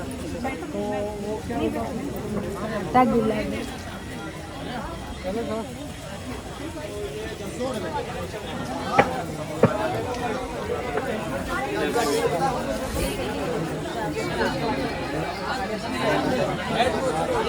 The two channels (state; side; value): identical; both; correlation 1.00